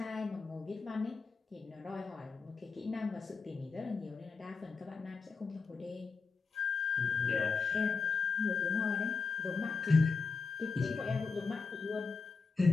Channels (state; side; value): quieter; right; 4.7 dB